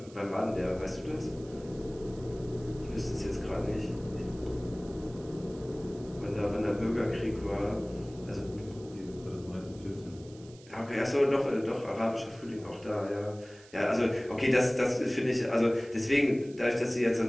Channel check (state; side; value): noise; right; hiss, 24 dB below the sound